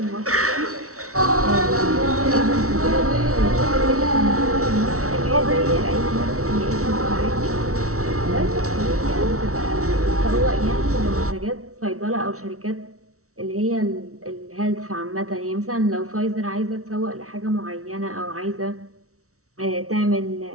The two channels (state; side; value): late; left; 0.64 ms